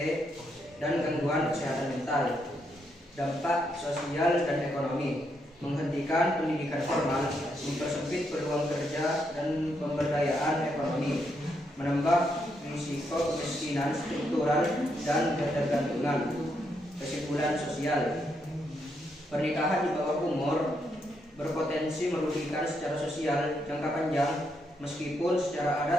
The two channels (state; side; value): normal; both; correlation 0.79